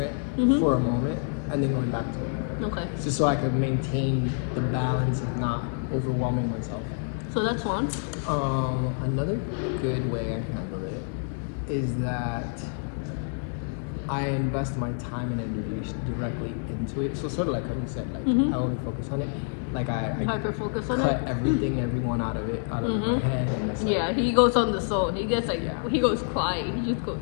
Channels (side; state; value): right; silent; 60 dB below the other